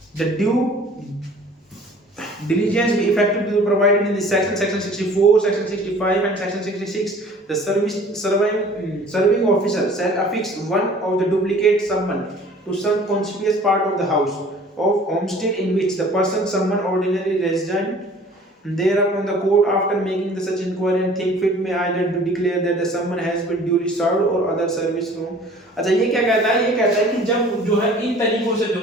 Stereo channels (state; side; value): normal; both; correlation 0.49